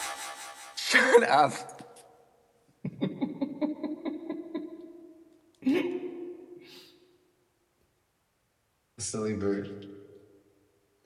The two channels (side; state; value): both; identical; correlation 1.00